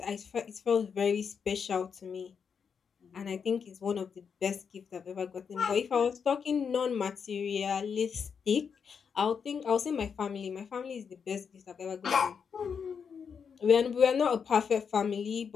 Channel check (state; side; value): quieter; right; 6.5 dB